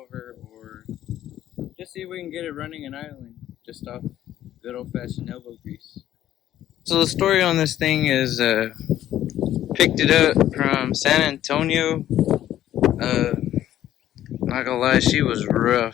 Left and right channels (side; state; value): right; quieter; 12.3 dB